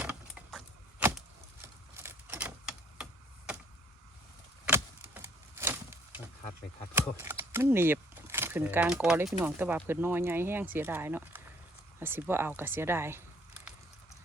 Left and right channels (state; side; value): normal; both; correlation 0.61